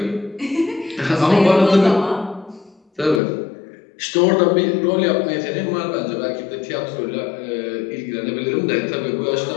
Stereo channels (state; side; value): drops out; right; at 3.2 s